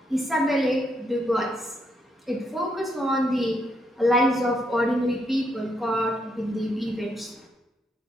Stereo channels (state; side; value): normal; both; correlation 0.77